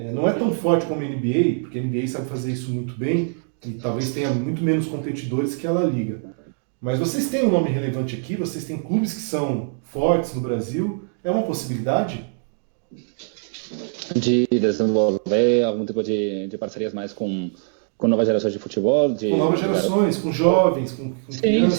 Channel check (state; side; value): silent; left; 64 dB below the other